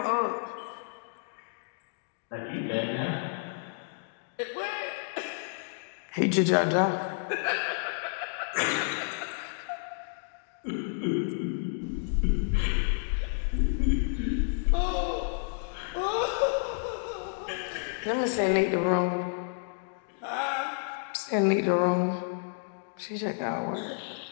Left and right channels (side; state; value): right; silent; digital silence